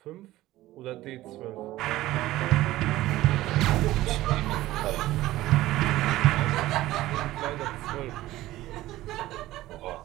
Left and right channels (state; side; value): quieter; left; 16.2 dB